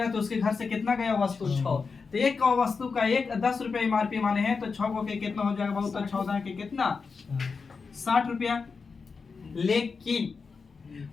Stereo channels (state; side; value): quieter; right; 4.9 dB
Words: तो उसके घर से कितना गया वस्तु? 6। तो एक वस्तु का 10 रुपया एमआरपी माने हैं तो 6 को के कितना हो जाएगा बाबू? तो 14 के कितना? 60 रुपया। लेकिन